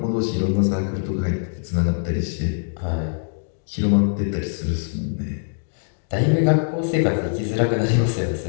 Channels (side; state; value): right; silent; digital silence